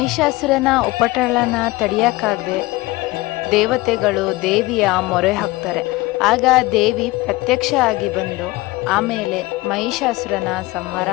ಉಪಟಳನ ತಡೆಯಕ್ಕಾಗದೆ ದೇವತೆಗಳು ದೇವಿಯ ಮೊರೆ ಹಾಕ್ತಾರೆ. ಆಗ ದೇವಿ ಪ್ರತ್ಯಕ್ಷ ಆಗಿ ಬಂದು ಆಮೇಲೆ ಮಹಿಷಾಸುರನ ಸಂಹಾರ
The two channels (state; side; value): quieter; right; 20.7 dB